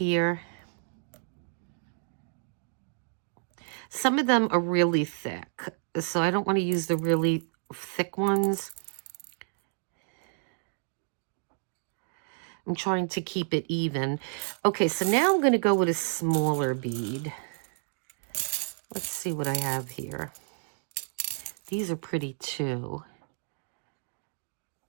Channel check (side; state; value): left; silent; 58 dB below the other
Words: Some of them are really thick, so I don't want to use the really thick ones. I'm trying to keep it even. Okay, so now I'm going to go with a smaller bead. Let's see what I have here. These are pretty too.